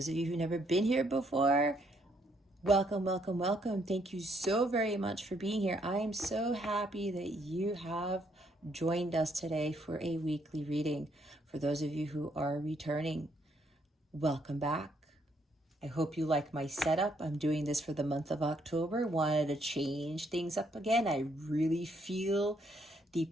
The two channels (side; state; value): both; normal; correlation 0.71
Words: of you who've never been here before, welcome, welcome, welcome. Thank you so very much for being here. I am so happy that you have joined us today for a weekly reading. For those of you who are returning, welcome back. I hope you like my setup. I'm doing this for the month of October. Wanted to change things up again. I really feel the